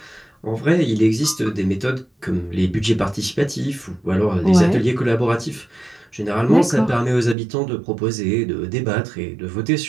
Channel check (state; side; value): drops out; left; at 7.4 s